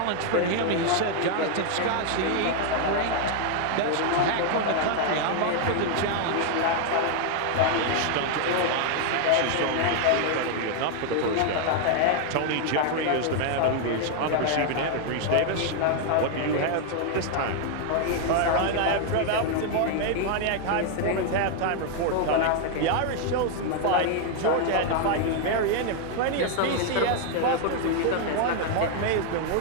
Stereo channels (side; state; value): both; different; correlation 0.00